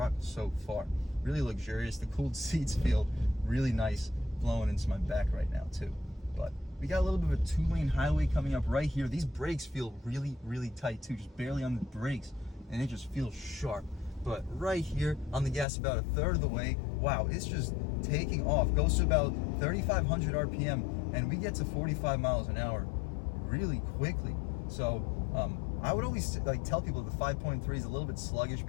so far. Really luxurious. The cooled seats feel really nice blowing into my back right now too. But we got a little bit of a 2-lane highway coming up right here. These brakes feel really, really tight too, just barely on the brakes, and it just feels sharp. But right here on the gas, about a third of the way, wow, it's just taking off. Goes to about 3,500 RPM, and we get to 45 miles an hour really quickly. So I would always like tell people the 5.3 is a little bit sluggish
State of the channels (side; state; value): right; drops out; at 15.7 s